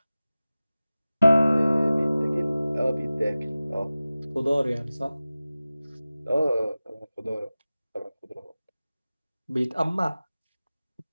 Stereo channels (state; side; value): inverted; both; correlation -0.97